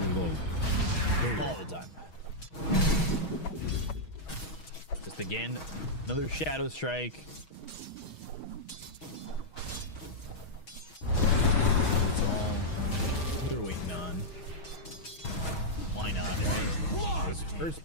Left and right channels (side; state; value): right; late; 6.3 ms